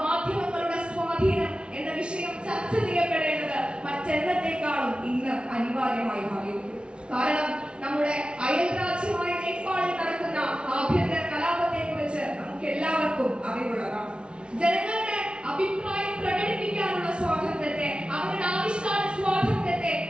സ്വാധീനം എന്ന വിഷയം ചർച്ച ചെയ്യപ്പെടേണ്ടത് മറ്റെന്നത്തേക്കാളും ഇന്ന് അനിവാര്യമായി മാറിയിരിക്കുന്നു. കാരണം നമ്മുടെ അയൽ രാജ്യമായ നേപ്പാളിൽ നടക്കുന്ന ആഭ്യന്തര കലാപത്തെ കുറിച്ച് നമുക്ക് എല്ലാവർക്കും അറിവുള്ളതാണ്. ജനങ്ങളുടെ അഭിപ്രായം പ്രകടിപ്പിക്കാനുള്ള സ്വാതന്ത്ര്യത്തെ, അവരുടെ ആവിഷ്കാര സ്വാതന്ത്ര്യത്തെ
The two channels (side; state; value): left; late; 0.057 ms